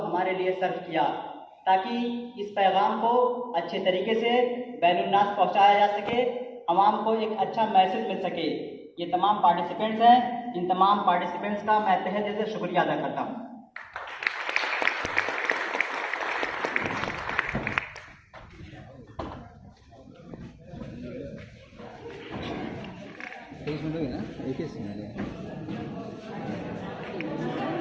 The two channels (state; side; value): identical; both; correlation 1.00